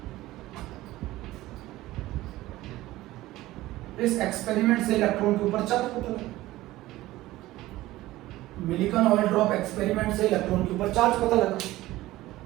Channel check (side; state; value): left; quieter; 17.0 dB